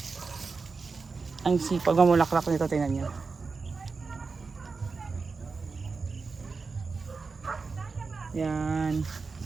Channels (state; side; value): quieter; left; 4.5 dB